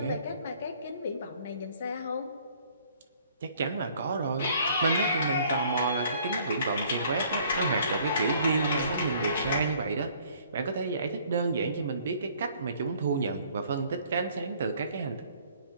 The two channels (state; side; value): inverted; both; correlation -0.59